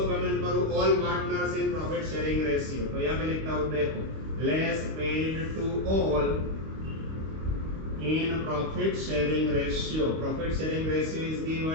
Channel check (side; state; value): left; late; 25 ms